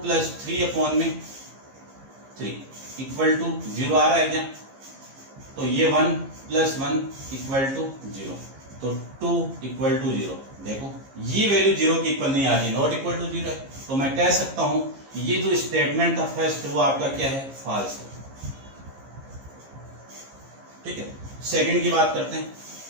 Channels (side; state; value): left; late; 15 ms